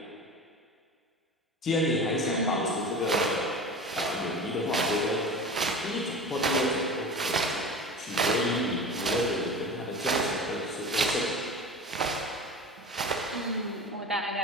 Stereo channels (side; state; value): both; normal; correlation 0.33